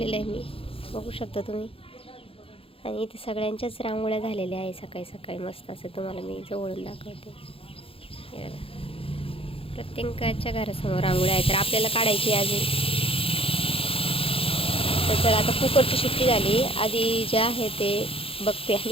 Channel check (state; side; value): late; right; 0.27 ms